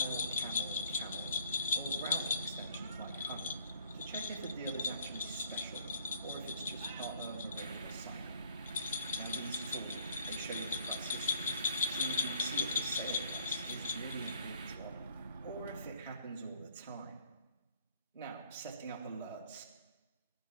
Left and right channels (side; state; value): both; inverted; correlation -0.57